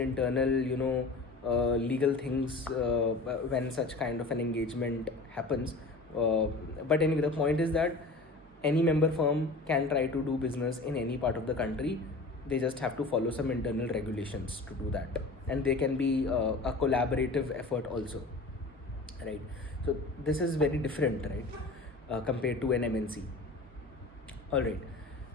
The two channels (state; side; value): quieter; right; 3.3 dB